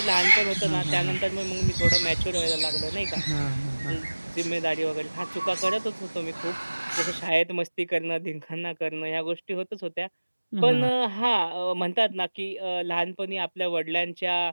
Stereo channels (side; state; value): both; inverted; correlation -1.00